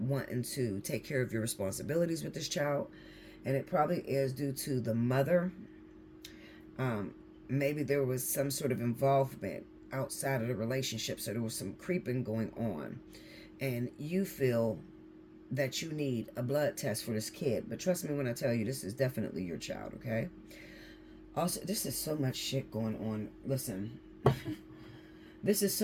to take care of your responsibilities with this child. And it probably is due to the mother. Maybe there was some sort of involvement outside of the relationship. So there was some creeping going on. And you feel that you need a blood test for this kid. But trust me when I tell you, this is definitely your child, okay? Also, this is so much shit going on. Listen, This is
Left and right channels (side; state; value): both; identical; correlation 1.00